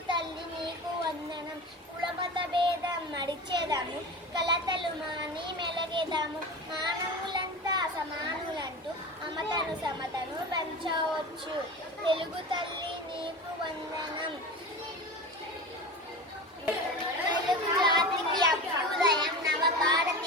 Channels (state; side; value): normal; both; correlation 0.30